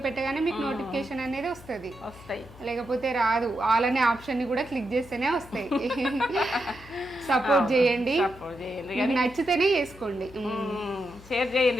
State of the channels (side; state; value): left; noise; hum, 20 dB below the sound